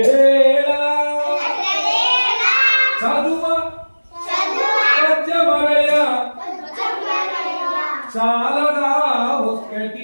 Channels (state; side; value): inverted; both; correlation -1.00